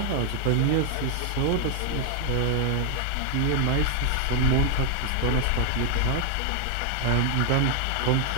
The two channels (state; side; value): different; both; correlation 0.00